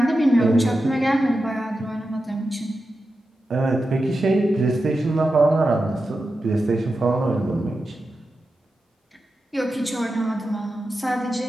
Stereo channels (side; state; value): both; normal; correlation 0.91